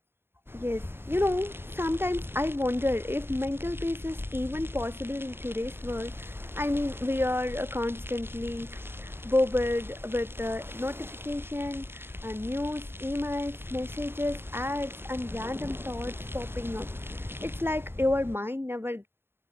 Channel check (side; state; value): left; late; 0.11 ms